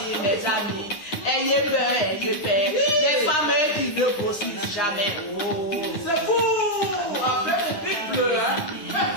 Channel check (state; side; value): late; right; 9.8 ms